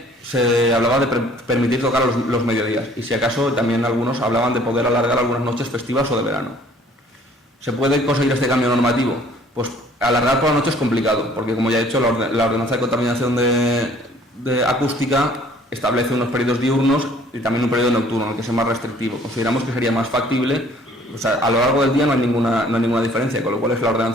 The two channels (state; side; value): normal; both; correlation 0.56